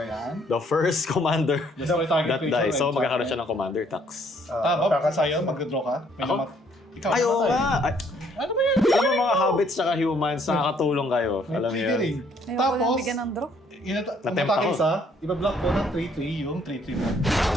yan. Ayan. The first commander Destroy target that creature. dies. So and magkakaroon target. siya ng commander tax. Bob, sa'yo, mag-draw ka. May Ako? namat- Ikaw, Ay, oo namatay. nga! Ay, Ano ba yan? alam mo mga hobbits saka humans, nakakatulong kayo. May Alam niyo triggering. yun. Ayoko Tapos, lang bigyan ng draw. Natempt umatake ako. isa, ibablock ko ng 3-3 yung 3-3 mo.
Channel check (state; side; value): normal; both; correlation 0.65